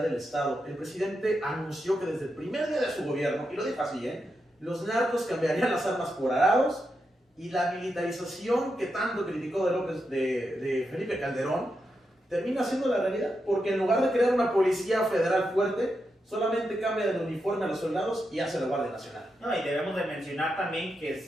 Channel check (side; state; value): both; normal; correlation 0.86